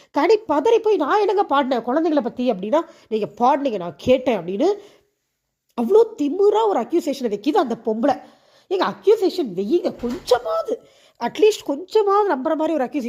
கனி பதறி போய், நான் என்னங்க பாடினேன் குழந்தைங்களை பற்றி அப்படின்னா, நீங்கள் பாடினீங்க நான் கேட்டேன் அப்படின்னு அவ்வளோ திமுறாக ஒரு அக்யூசேஷனை வைக்கிது அந்த பொம்பளை. எங்கள் அக்யூசேஷன் வெய்யுங்க, கொஞ்சமாவது அட்லீஸ்ட் கொஞ்சமாவது நம்புற மாதிரி ஒரு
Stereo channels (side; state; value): both; identical; correlation 1.00